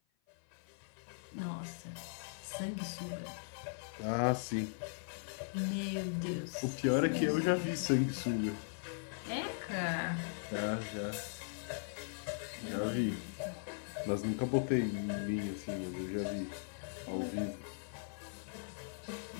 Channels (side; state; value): right; silent; 52 dB below the other